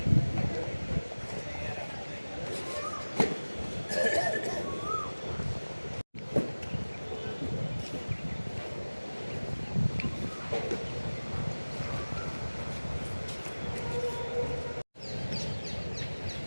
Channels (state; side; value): inverted; both; correlation -1.00